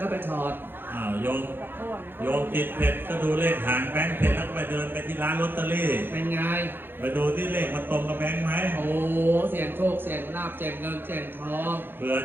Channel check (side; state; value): left; late; 0.10 ms